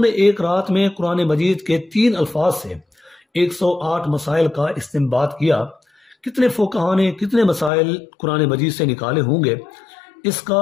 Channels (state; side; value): drops out; right; at 7.7 s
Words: نے ایک رات میں قرآن مجید کے 3 الفاظ سے 108 مسائل کا استنباط کیا۔ کتنے فقہاء نے کتنے مسائل قرآن مجید سے نکالے ہوں گے، اس کا